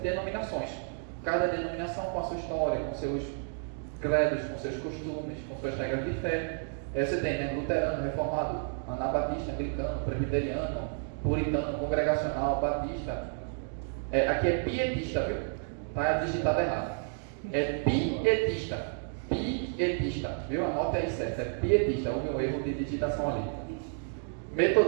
Cada denominação com a sua história, com seus credos, com seus costumes, com suas regras de fé. Aí você tem, né, luterano, reformado, anabatista, anglicano, presbiteriano, puritano, congregacional, batista. Aqui é pietista, viu? Está digitado errado. É pietista, viu? Anote aí certo, é pietista, houve um erro de digitação ali.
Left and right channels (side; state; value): left; silent; 57 dB below the other